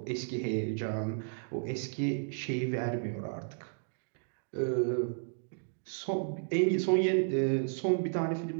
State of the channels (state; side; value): silent; left; digital silence